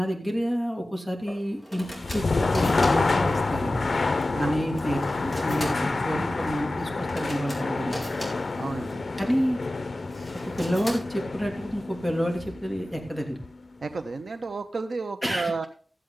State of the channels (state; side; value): normal; both; correlation 0.95